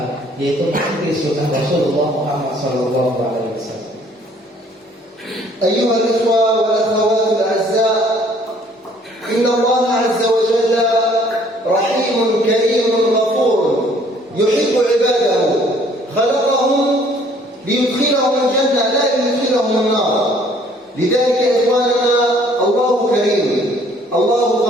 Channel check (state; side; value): normal; both; correlation 0.59